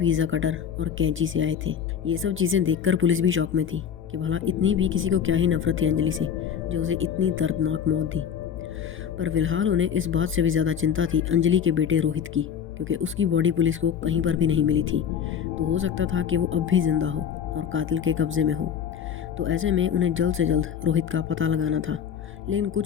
कटर और कैंची से आए थे। ये सब चीज़ें देखकर पुलिस भी शॉक में थी कि भला इतनी भी किसी को क्या ही नफरत थी अंजलि से, जो उसे इतनी दर्दनाक मौत दी। पर फिलहाल उन्हें इस बात से भी ज़्यादा चिंता थी अंजलि के बेटे रोहित की, क्योंकि उसकी बॉडी पुलिस को कहीं पर भी नहीं मिली थी। तो हो सकता था कि वो अब भी जिंदा हो और कातिल के कब्जे में हो। तो ऐसे में उन्हें जल्द से जल्द रोहित का पता लगाना था। लेकिन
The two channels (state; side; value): quieter; right; 8.1 dB